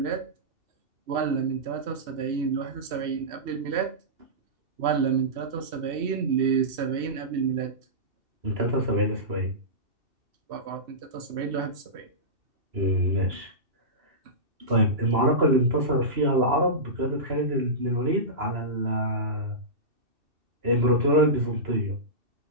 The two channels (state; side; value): late; left; 2.7 ms